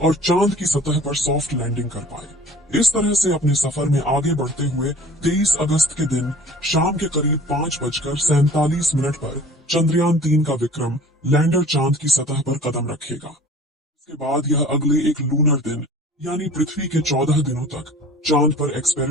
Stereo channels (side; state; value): both; normal; correlation 0.46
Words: चांद की सतह पर सॉफ्ट लैंडिंग कर पाए। इस तरह से अपने सफर में आगे बढ़ते हुए 23 अगस्त के दिन शाम के करीब 5:47 पर चंद्रयान-3 का विक्रम लैंडर चांद की सतह पर कदम रखेगा। इसके बाद यह अगले एक लूनर दिन यानी पृथ्वी के 14 दिनों तक चांद पर